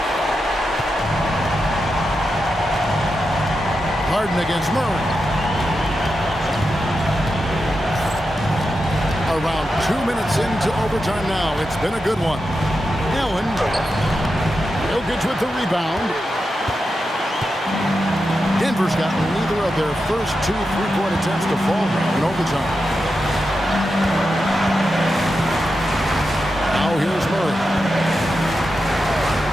Harden against Murray. Around 2 minutes into overtime now. It's been a good one. Allen. Jokic with the rebound. Denver's gotten neither of their first two three-point attempts to fall in overtime. Now here's Murray.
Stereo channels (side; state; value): both; normal; correlation 0.88